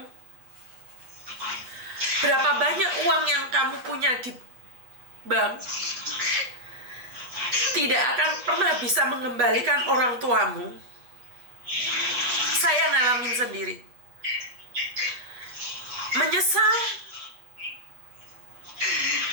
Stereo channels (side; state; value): left; late; 8.3 ms